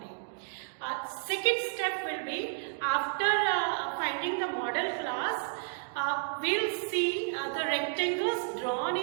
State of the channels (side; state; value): left; silent; digital silence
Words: Second step will be, after finding the model class, we'll see the rectangles drawn